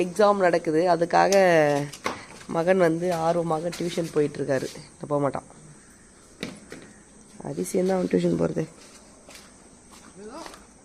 எக்ஸாம் நடக்குது. அதுக்காக மகன் வந்து ஆர்வமாக டியூஷன் போயிட்டுருக்காரு. போக மாட்டான். அதிசயம் தான் அவன் டியூஷன் போகிறது.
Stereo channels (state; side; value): identical; both; correlation 1.00